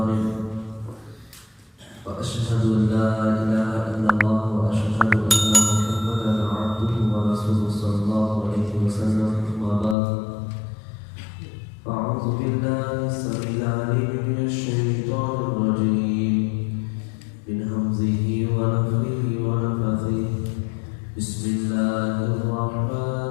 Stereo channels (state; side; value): drops out; right; at 10.0 s